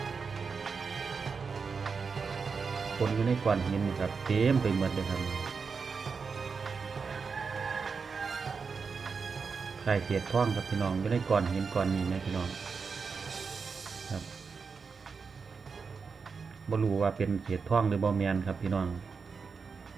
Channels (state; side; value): quieter; left; 5.3 dB